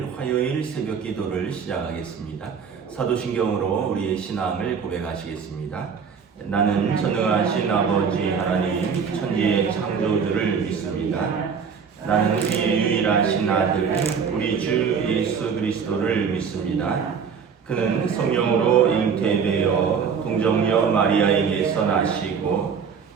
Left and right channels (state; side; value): quieter; left; 6.4 dB